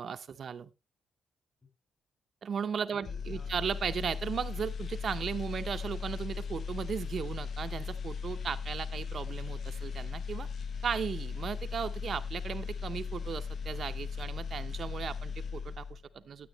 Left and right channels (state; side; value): normal; both; correlation 0.77